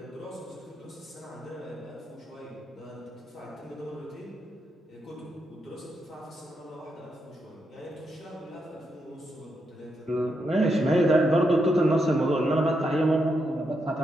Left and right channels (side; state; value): both; normal; correlation 0.82